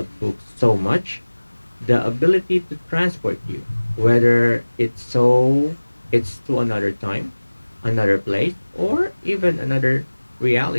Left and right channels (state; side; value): inverted; both; correlation -1.00